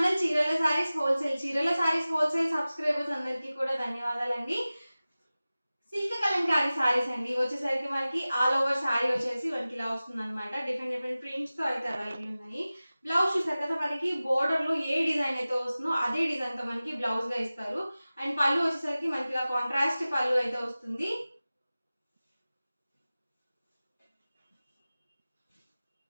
చీరల saris wholesale subscribers అందరికీ కూడా ధన్యవాదాలండి. సిల్క్ కలంకారీ సారీస్ అండి. వచ్చేసరికి మనకి ఆల్ ఓవర్ సారీ వచ్చేసి మనకి ఇలా వస్తుందన్నమాట. డిఫరెంట్ ప్రింట్స్తో అయితే అవైలబుల్ ఉన్నాయి. బ్లౌజ్ చూసారు కదా, మనకి బోర్డర్లో ఏ డిజైన్ అయితే వస్తుందో అదే డిజైన్తో మనకి బ్లౌజ్గా ఇస్తారు. అండ్ పళ్ళు వచ్చేసరికి మనకి ఇలా కాంట్రాస్ట్ పళ్ళు అయితే వస్తుంది.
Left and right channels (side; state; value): both; inverted; correlation -0.97